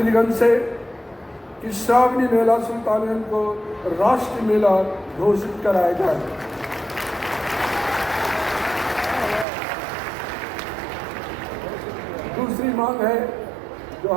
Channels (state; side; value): drops out; left; at 9.5 s